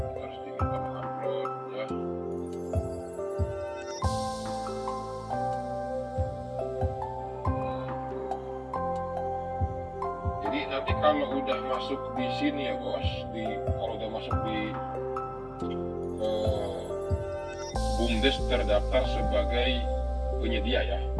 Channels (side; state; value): both; identical; correlation 1.00